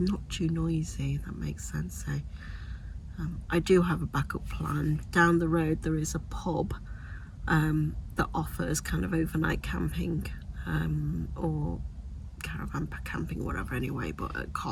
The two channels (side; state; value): both; identical; correlation 1.00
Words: too noisy, if that makes sense. So I do have a backup plan. Down the road there is a pub that offers kind of overnight camping or caravan camping, whatever, anyway, but at